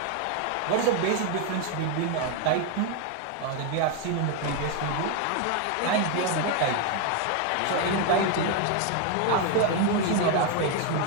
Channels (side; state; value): both; different; correlation 0.01